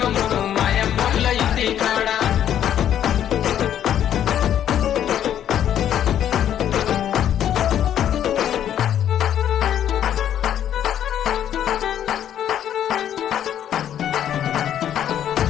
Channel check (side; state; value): right; quieter; 10.3 dB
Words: మయమ్మల ఇంటి కాడ